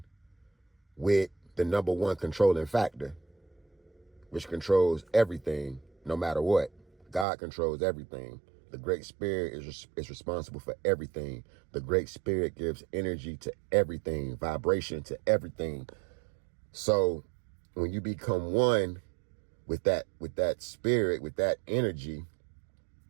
with the number one controlling factor, which controls everything no matter what. God controls everything. The Great Spirit is responsible for everything. The Great Spirit gives energy to everything, vibration to everything. So when you become one with that spirit, with that energy,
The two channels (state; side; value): drops out; left; at 7.2 s